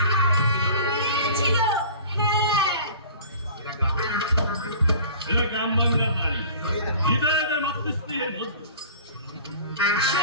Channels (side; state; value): both; inverted; correlation -0.44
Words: মেয়ে ছিল। হ্যাঁ, এরা গ্রাম বাংলার নারী, হৃদয়ের মাতৃস্নেহের মধ্যে।